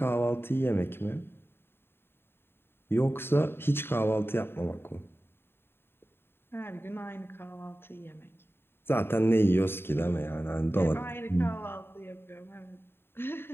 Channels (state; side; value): late; right; 0.11 ms